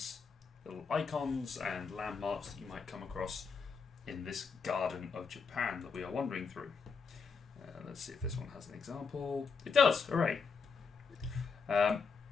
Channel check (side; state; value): right; quieter; 5.3 dB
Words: little icons and landmarks that you might come across in this garden of Japan that we are wandering through. Let's see if this one has an example. It does! Hooray!